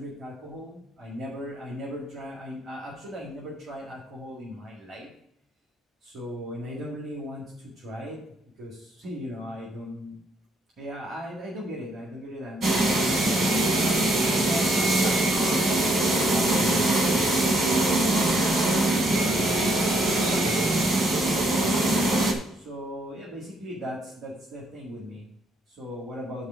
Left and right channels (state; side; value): normal; both; correlation 0.71